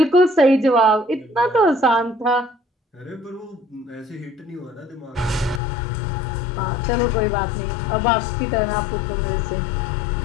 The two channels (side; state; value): right; drops out; at 5.6 s